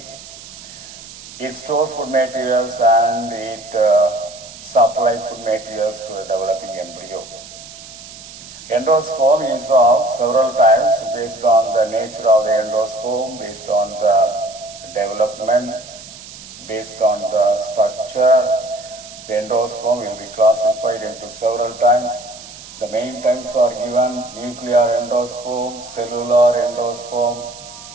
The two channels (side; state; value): right; noise; hiss, 16 dB below the sound